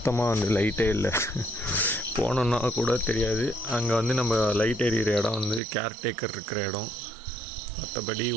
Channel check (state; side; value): drops out; left; at 5.6 s